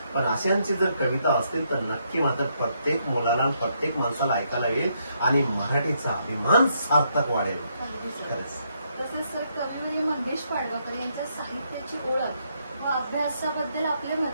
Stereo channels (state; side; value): inverted; both; correlation -0.75